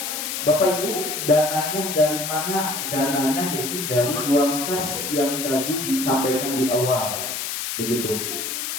Bapak Ibu, dananya dari mana? Dananya yaitu dari uang kas yang tadi disampaikan di awal. Begitu.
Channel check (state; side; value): noise; left; hiss, 4 dB below the sound